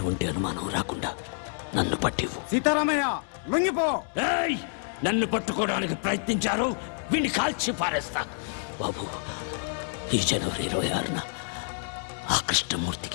అనుమానం రాకుండా నన్ను పట్టివు. సీతారామయ్య లొంగిపో. ఏయ్! నన్ను పట్టుకోవడానికి ప్రయత్నించారు, వీడిని కాల్చి పారేస్తా. బాబు, ఈ జనవరి 26న ఆ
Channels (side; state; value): right; silent; 59 dB below the other